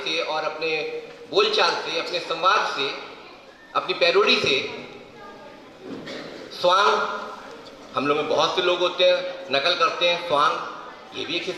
और अपने बोलचाल से, अपने संवाद से, अपनी पैरोडी से। स्वांग, हम लोग में बहुत से लोग होते हैं नकल करते हैं, स्वांग ये भी एक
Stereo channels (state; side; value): identical; both; correlation 1.00